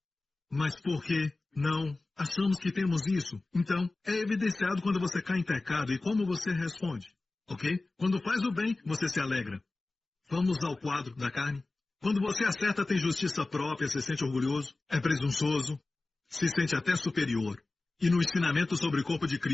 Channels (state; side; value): quieter; right; 3.3 dB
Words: Mas por que não achamos que temos isso? Então, é evidenciado quando você cai em pecado e como você responde, ok? Quando faz o bem, você se alegra. Vamos ao quadro da carne. Quando você acerta, tem justiça própria, se sente orgulhoso, é presunçoso, se sente até superior. E no ensinamento sobre o corpo de